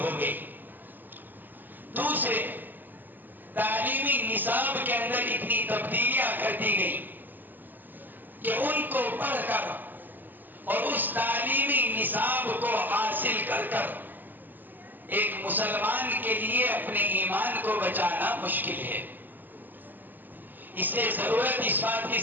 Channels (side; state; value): left; late; 0.088 ms